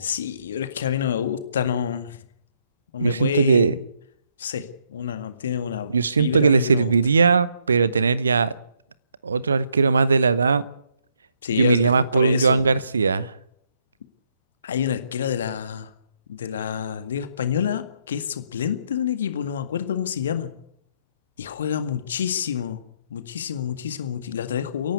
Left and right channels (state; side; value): inverted; both; correlation -0.73